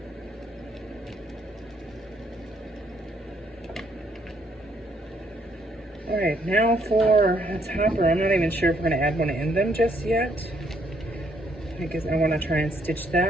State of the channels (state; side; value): normal; both; correlation 0.70